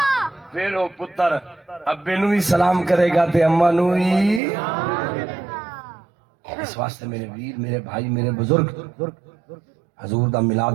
پھر وہ پتر ابے نو ہی سلام کرے گا تے اماں نو ہی اس واسطے میرے ویر میرے بھائی میرے بزرگ حضور دا میلاد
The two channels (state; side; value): drops out; left; at 4.4 s